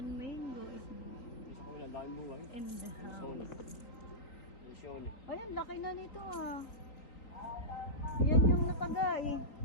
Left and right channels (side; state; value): right; late; 3.9 ms